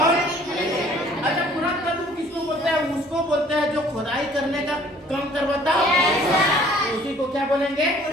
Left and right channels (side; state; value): both; normal; correlation 0.55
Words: अच्छा, पुरातत्व किसको बोलते हैं? उसको बोलते हैं जो खुदाई करने का काम करवाता है, उसी को क्या बोलेंगे?